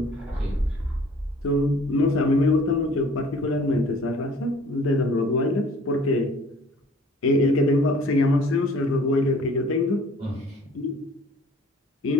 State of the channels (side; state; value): both; normal; correlation 0.52